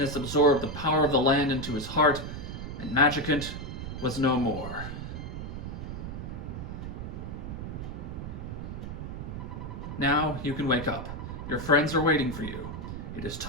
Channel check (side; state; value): right; noise; rumble, 7 dB below the sound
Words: absorbed the power of the land into his heart, and Magicant was no more. Now you can wake up. Your friends are waiting for you. It is